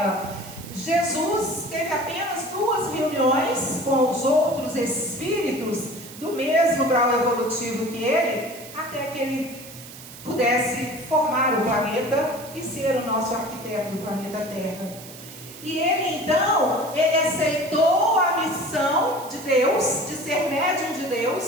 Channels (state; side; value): noise; right; hiss, 16 dB below the sound